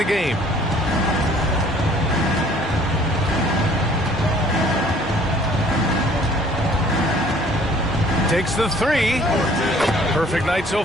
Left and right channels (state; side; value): normal; both; correlation 0.55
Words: game. Takes the three. Perfect night so